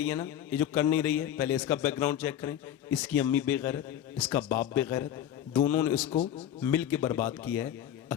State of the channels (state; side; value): quieter; right; 10.7 dB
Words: है ना, ये जो कर नहीं रही है, पहले इसका बैकग्राउंड चेक करें। इसकी अम्मी बेगैरत, इसका बाप बेगैरत, दोनों ने इसको मिल के बर्बाद किया है,